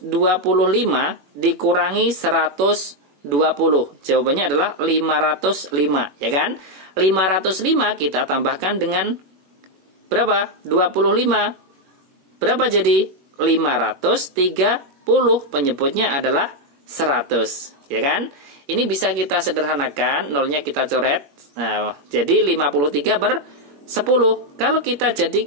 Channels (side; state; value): left; late; 21 ms